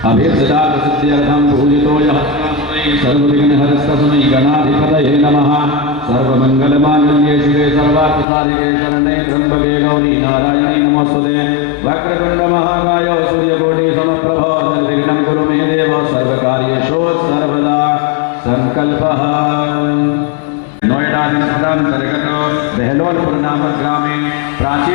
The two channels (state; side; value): drops out; right; at 8.2 s